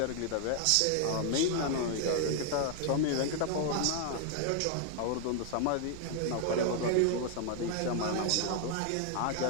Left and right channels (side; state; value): both; different; correlation 0.00